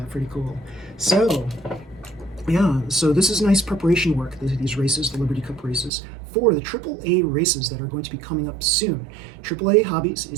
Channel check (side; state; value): left; drops out; at 5.9 s